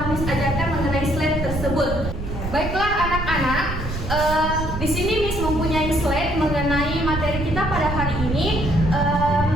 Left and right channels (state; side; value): noise; right; rumble, 6 dB below the sound